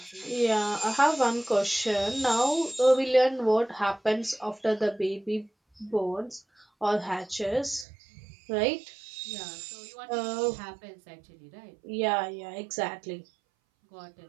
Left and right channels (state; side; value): drops out; left; at 7.9 s